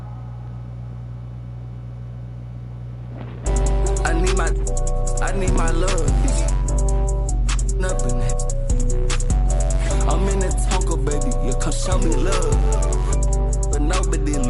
I need my love. Nothing. I'm in the Tonka, baby. You come show me love. But nobody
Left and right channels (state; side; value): identical; both; correlation 1.00